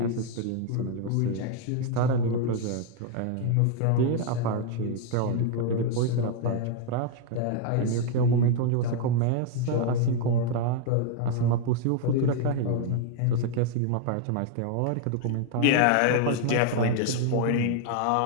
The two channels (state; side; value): different; both; correlation 0.00